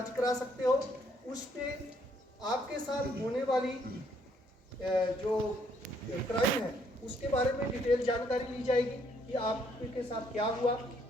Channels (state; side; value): normal; both; correlation 0.69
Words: करा सकते हो। उस पर आपके साथ होने वाली जो क्राइम है उसके बारे में डिटेल जानकारी ली जाएगी कि आपके साथ क्या हुआ,